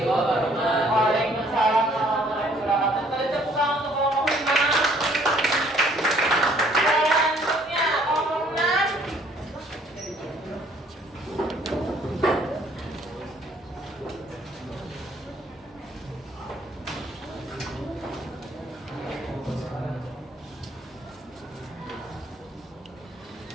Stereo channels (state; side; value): normal; both; correlation 0.61